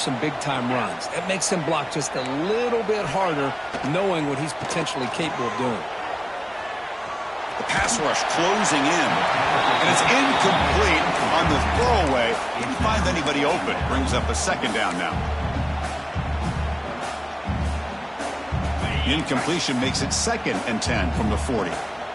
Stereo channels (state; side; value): identical; both; correlation 1.00